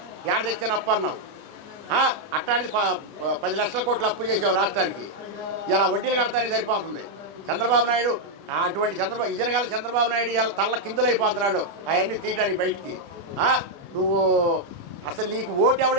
ఏడ తెచ్చాను అప్పు అన్నావు. అట్టానికి 10 లక్షల కోట్ల అప్పు చేసావు రాష్ట్రానికి. ఇలా వడ్డీలు కడతానికి సరిపోతుంది. చంద్రబాబు నాయుడు అటువంటి ఇజనగాల చంద్రబాబు నాయుడు ఇలా తల్ల కిందులైపోతున్నాడు అవన్నీ తీయటానికి బయటికి. నువ్వు అసలు నీకు ఓటు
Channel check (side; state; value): left; late; 30 ms